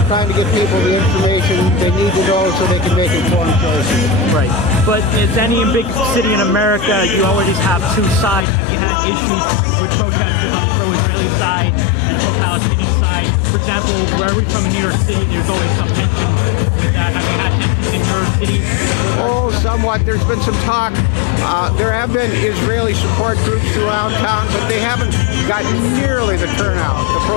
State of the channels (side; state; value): right; drops out; at 8.5 s